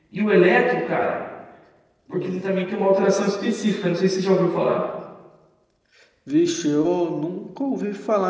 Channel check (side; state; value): both; identical; correlation 1.00